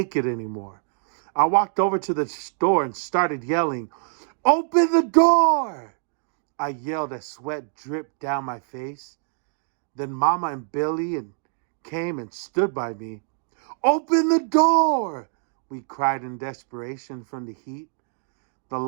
it anymore. I walked over to the door and started yelling, "Open the door!" I yelled as sweat dripped down my face. Then Mama and Billy came and stood by me. "Open the door!" we cried in desperation from the heat. The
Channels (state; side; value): silent; left; 62 dB below the other